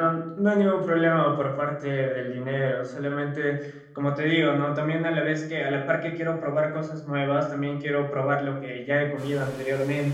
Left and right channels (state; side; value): identical; both; correlation 1.00